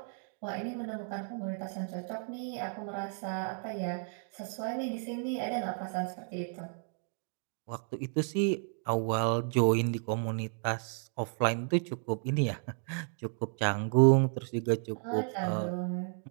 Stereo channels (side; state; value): left; silent; 56 dB below the other